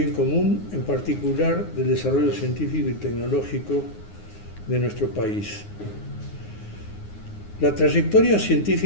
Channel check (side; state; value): right; late; 9.6 ms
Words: común, en particular del desarrollo científico y tecnológico de nuestro país. La trayectoria